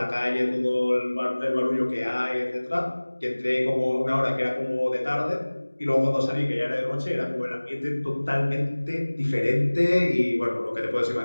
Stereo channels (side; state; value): both; inverted; correlation -1.00